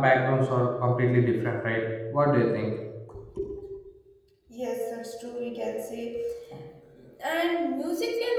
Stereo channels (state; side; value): identical; both; correlation 1.00